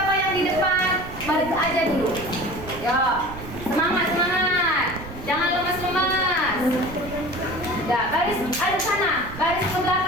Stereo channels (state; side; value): noise; right; rumble, 12 dB below the sound